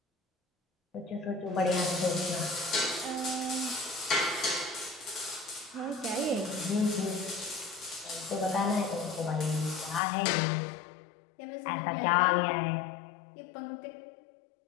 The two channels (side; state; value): right; drops out; at 10.0 s